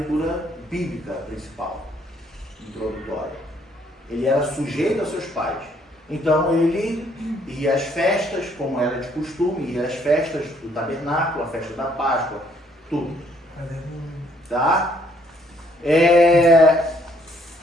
bíblica principal, introdutória. Ele era sujeito aos seus pais. Então ele ia às festas, como era de costume, ia às festas do tabernáculo, a festa da Páscoa, tudo. Tá?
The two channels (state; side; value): normal; both; correlation 0.66